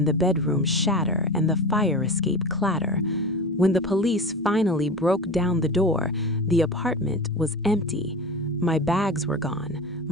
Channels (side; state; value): both; normal; correlation 0.30